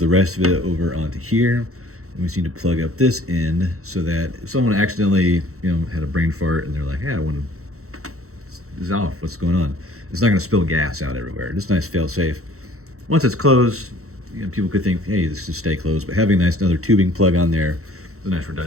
rest of it over onto here. And we just need to plug up this end so that if someone accidentally, had a brain fart and they're like, hey, I want to, this is off, what's going on? It's not going to spill gas out everywhere. Just nice fail safe. Once it's closed, people could think, hey, this should stay closed, but having a nice another tubing plug on there is a nice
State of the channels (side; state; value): left; late; 0.64 ms